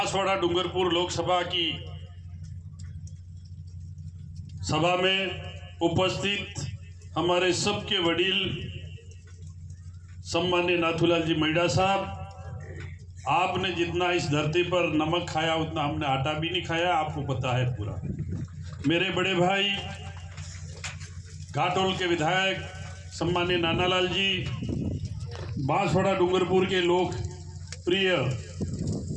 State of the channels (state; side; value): identical; both; correlation 1.00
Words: डूंगरपुर लोकसभा की सभा में उपस्थित हमारे सबके वडील सम्मान्य नाथूलाल जी मैडा साहब, आपने जितना इस धरती पर नमक खाया उतना हमने आटा भी नहीं खाया, आपको पता है पूरा। मेरे बड़े भाई घाटोल के विधायक सम्मान्य नानालाल जी, बांसवाड़ा डूंगरपुर के लोक प्रिय